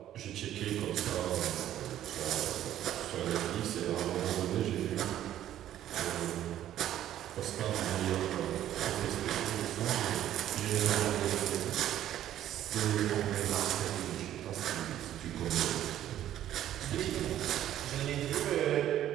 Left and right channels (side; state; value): left; quieter; 12.0 dB